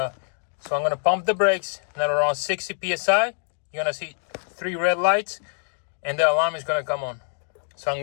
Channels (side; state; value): right; silent; digital silence